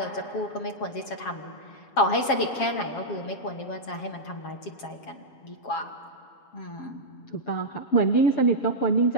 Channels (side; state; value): right; late; 7.3 ms